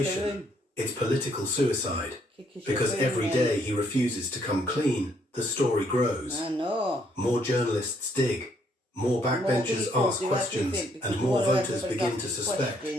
it's political suicide. Because every day he refuses to come clean, the story grows. I know. More journalists dig. More backbenchers ask questions, and more voters begin to suspect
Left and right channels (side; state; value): both; normal; correlation 0.69